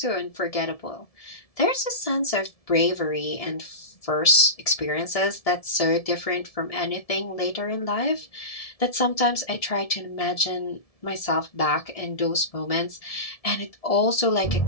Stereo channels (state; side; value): late; right; 1.7 ms